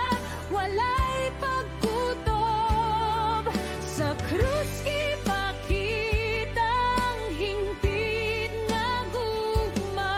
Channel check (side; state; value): both; identical; correlation 1.00